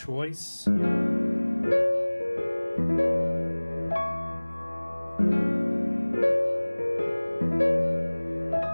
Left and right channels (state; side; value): inverted; both; correlation -1.00